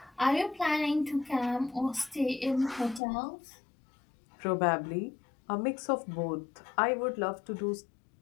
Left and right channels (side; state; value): right; drops out; at 3.0 s